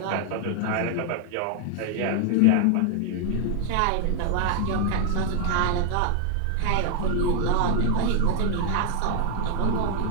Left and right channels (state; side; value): different; both; correlation 0.00